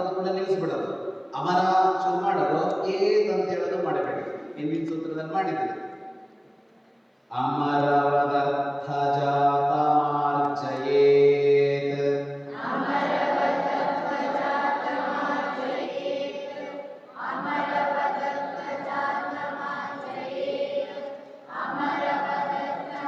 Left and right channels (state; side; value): identical; both; correlation 1.00